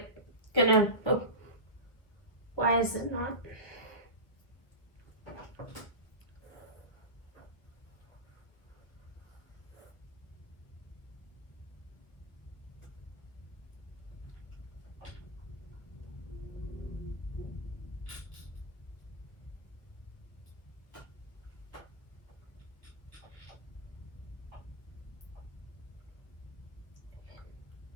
why is it not?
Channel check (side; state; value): right; late; 1.4 ms